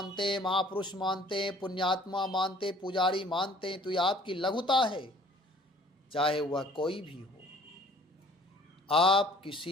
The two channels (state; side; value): normal; both; correlation 0.53